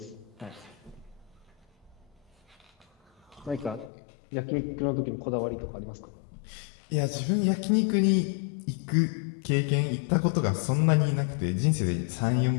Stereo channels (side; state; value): right; drops out; at 3.9 s